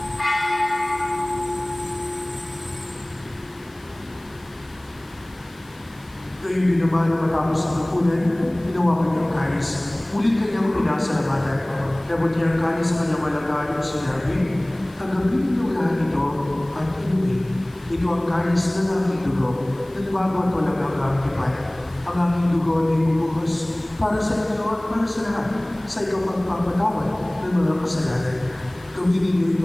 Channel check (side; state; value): left; noise; hiss, 28 dB below the sound